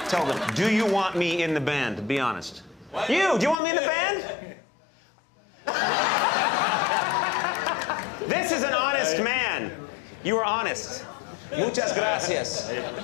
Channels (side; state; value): right; drops out; at 3.6 s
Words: Tell them, do you want me in the band? Be honest. Do you want me in the band? This is an honest man. You are honest. Muchas gracias.